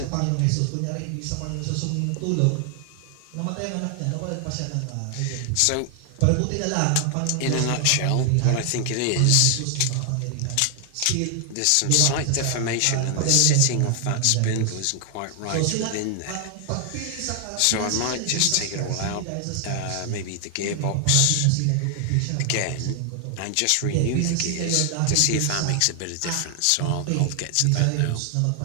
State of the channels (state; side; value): different; both; correlation 0.00